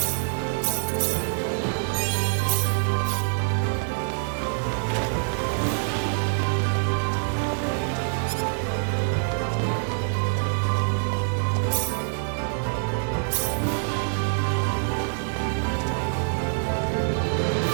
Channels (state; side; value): silent; left; digital silence